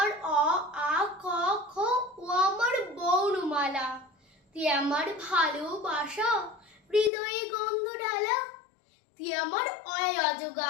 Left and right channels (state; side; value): drops out; right; at 7.1 s